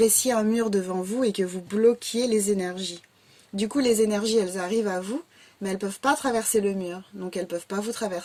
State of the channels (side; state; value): both; identical; correlation 1.00